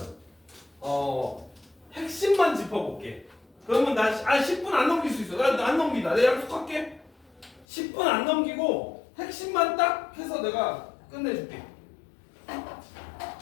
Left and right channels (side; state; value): right; drops out; at 7.7 s